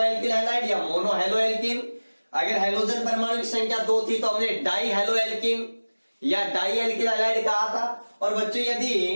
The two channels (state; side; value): inverted; both; correlation -1.00